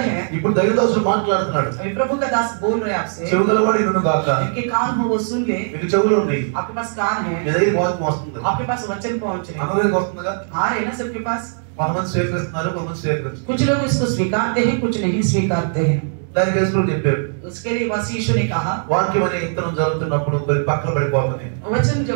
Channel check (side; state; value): left; silent; digital silence